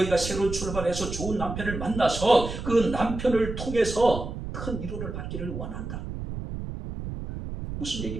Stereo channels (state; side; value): noise; right; rumble, 7 dB below the sound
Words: 새로운 출발해서 좋은 남편을 만나서 그 남편을 통해서 큰 위로를 받기를 원한다. 무슨